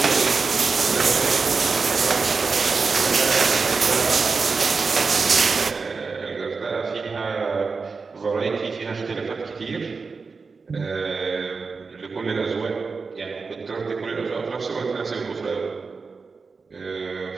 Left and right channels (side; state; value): left; quieter; 4.7 dB